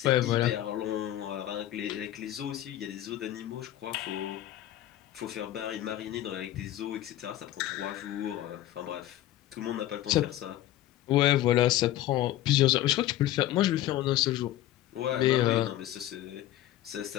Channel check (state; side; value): quieter; right; 13.8 dB